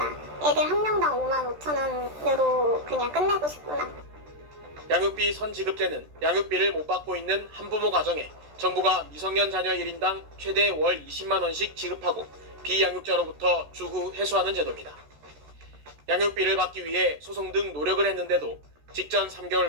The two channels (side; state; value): left; late; 14 ms